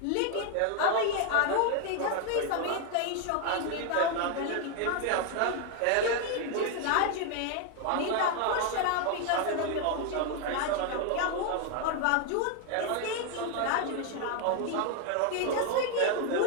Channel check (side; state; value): both; different; correlation 0.01